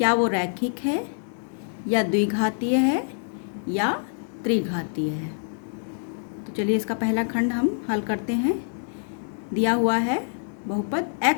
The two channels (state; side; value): silent; right; digital silence